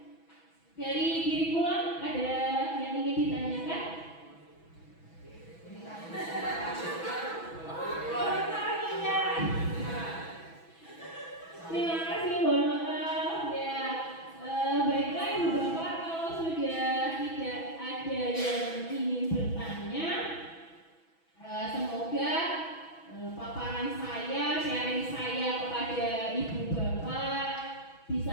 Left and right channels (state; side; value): late; right; 6.1 ms